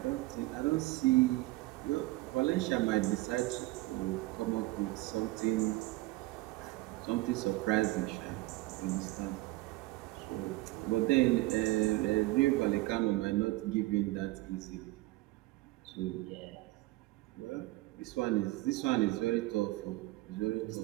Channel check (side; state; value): left; quieter; 19.9 dB